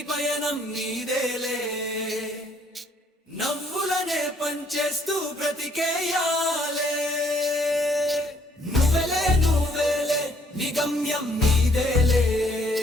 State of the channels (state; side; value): normal; both; correlation 0.65